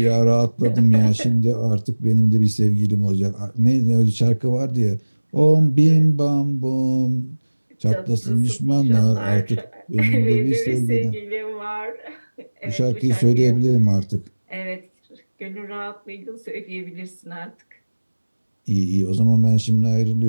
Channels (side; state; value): both; inverted; correlation -1.00